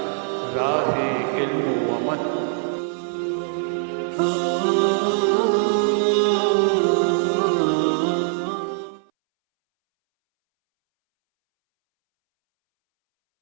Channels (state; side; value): silent; left; 64 dB below the other